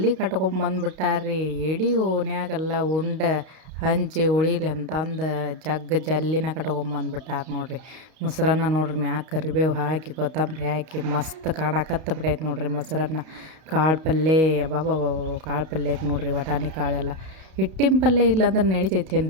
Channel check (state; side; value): late; left; 32 ms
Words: ಕಟ್ಕೊಂಬಂದ್ಬಿಟ್ಟಾರ್ರಿ. ಇಡೀ ಓಣ್ಯಾಗೆಲ್ಲ ಉಂಡೆ ಹಂಚಿ ಉಳಿಲಿ ಅಂತಂದು ಜಲ್ಲಿನ ಕಟ್ಕೊಂಬಂದ್ಬಿಟ್ಟಾರ ನೋಡ್ರಿ. ಮೊಸರನ್ನ ನೋಡ್ರಿ, ಮ್ಯಾಗ ಕರಿಬೇವು ಹಾಕಿ ಕೊತ್ತಂಬರಿ ಹಾಕಿ ಮಸ್ತ್ ಕಾಣಕತ್ತ ಬಿಟ್ಟೈತೆ ನೋಡ್ರಿ ಮೊಸರನ್ನ. ಕಾಳು ಪಲ್ಯ ಅಬ್ಬಾಬಾಬಾ ಕಾಳು ಪಲ್ಯಕ್ಕೆ ನೋಡ್ರಿ, ವಟಾಣಿ ಕಾಳೆಲ್ಲ. ಹಿಟ್ಟಿನ ಪಲ್ಯ ಇಲ್ಲಾಂದ್ರೆ